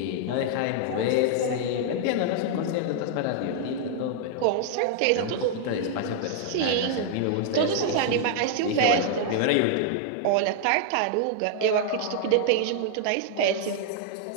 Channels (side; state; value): both; different; correlation -0.01